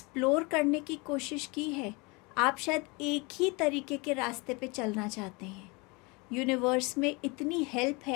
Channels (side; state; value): right; quieter; 27.6 dB